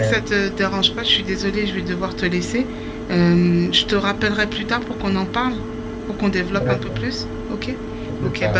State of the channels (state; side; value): identical; both; correlation 1.00